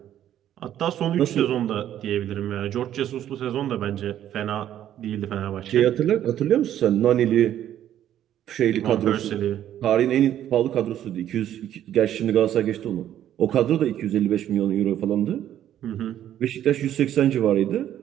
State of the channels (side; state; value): left; quieter; 11.3 dB